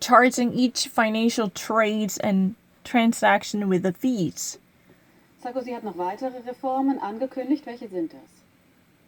each financial trades and transaction with the fees. Sarkozy hat noch weitere Reformen angekündigt. Welche sind das?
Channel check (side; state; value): both; identical; correlation 1.00